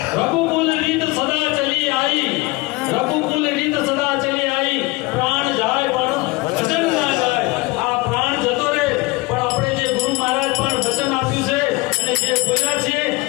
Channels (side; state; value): right; quieter; 23.0 dB